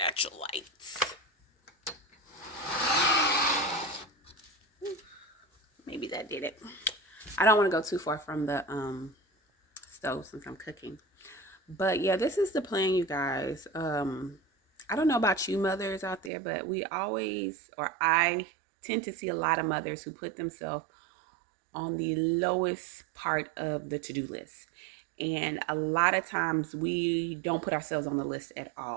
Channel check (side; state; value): left; drops out; at 16.3 s